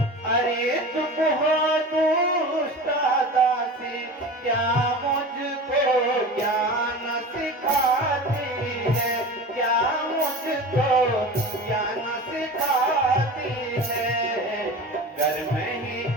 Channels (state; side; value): normal; both; correlation 0.33